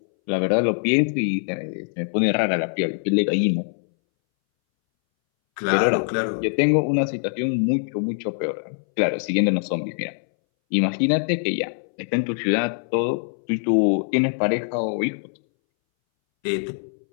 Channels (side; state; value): right; silent; 62 dB below the other